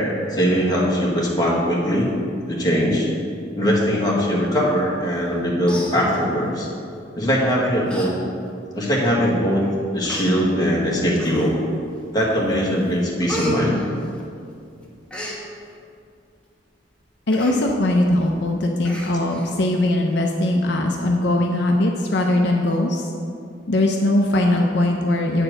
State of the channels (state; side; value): normal; both; correlation 0.63